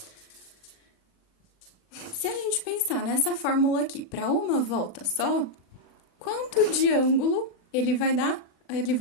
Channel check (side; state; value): right; late; 39 ms